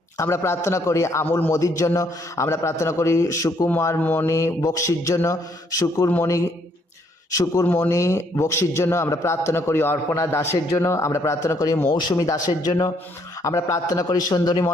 আমরা প্রার্থনা করি আমুল মোদির জন্য, আমরা প্রার্থনা করি সুকুমার মণি বক্সির জন্য, শুকুরমণি বক্সির জন্য আমরা প্রার্থনা করি, অর্পণা দাসের জন্য আমরা প্রার্থনা করি, মৌসুমী দাসের জন্য আমরা প্রার্থনা করি, সুন্দরী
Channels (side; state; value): both; normal; correlation 0.69